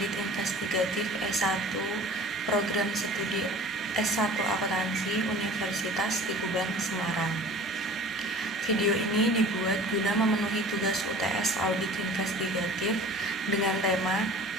Investigatif S1 Program Studi S1 Akuntansi Universitas Tikuban, Semarang. Video ini dibuat guna memenuhi tugas UTS Audit Investigatif dengan tema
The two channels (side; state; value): both; normal; correlation 0.44